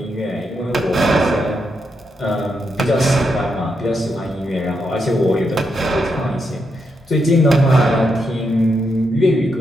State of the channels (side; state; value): both; normal; correlation 0.82